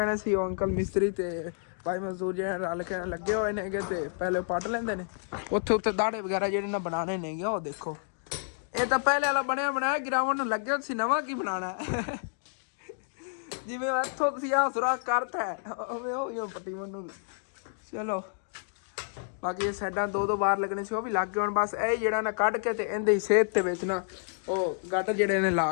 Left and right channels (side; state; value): right; silent; digital silence